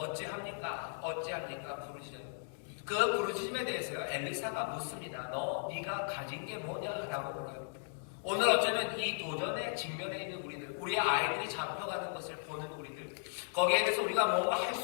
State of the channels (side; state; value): right; silent; 53 dB below the other